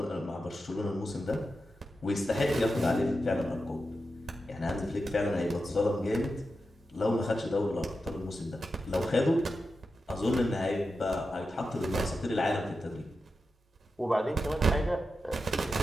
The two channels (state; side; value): normal; both; correlation 0.90